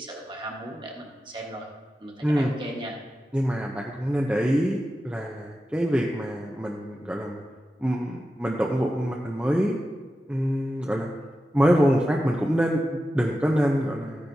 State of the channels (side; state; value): both; normal; correlation 0.92